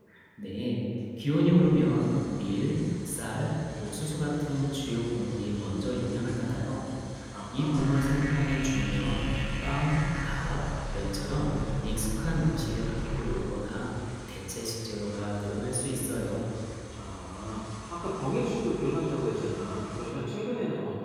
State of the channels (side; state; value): both; identical; correlation 1.00